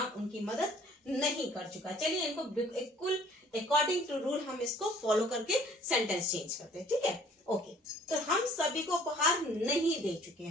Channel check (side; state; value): both; normal; correlation 0.55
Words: उनकी मदद नहीं कर चुका। चलिए इनको बिल्कुल अकॉर्डिंग टू रूल हम इसको फॉलो करके सेंटेंस चेंज करते हैं, ठीक है, ओके। तो हम सभी को उपहार नहीं दे चुके